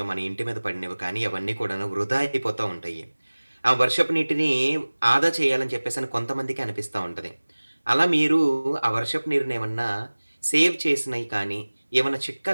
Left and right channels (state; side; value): inverted; both; correlation -1.00